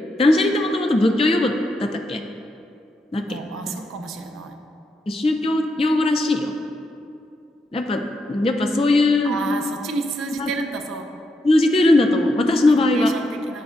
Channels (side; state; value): both; normal; correlation 0.82